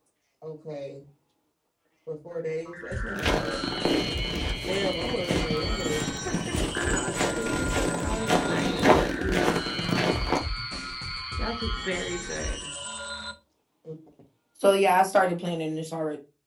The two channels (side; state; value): both; identical; correlation 1.00